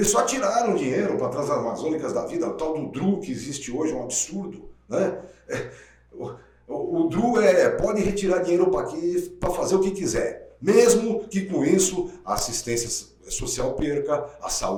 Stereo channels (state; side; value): identical; both; correlation 1.00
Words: só tiraram dinheiro para Transamazônicas da vida, o tal do DRU que existe hoje, é um absurdo, né? O DRU pode retirar dinheiro para aqui para fazer o que quiser, mesmo que com isso a assistência social perca, a